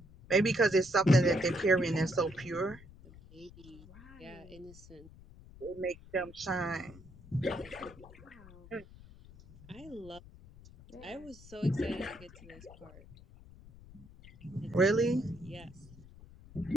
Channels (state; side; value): noise; left; rumble, 20 dB below the sound